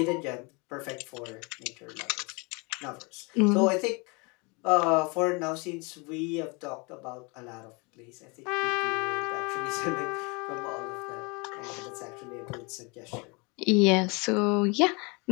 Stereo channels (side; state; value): right; quieter; 29.6 dB